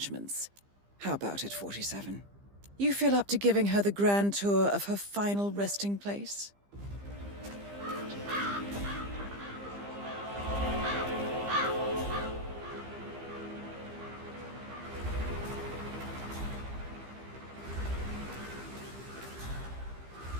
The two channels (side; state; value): left; late; 15 ms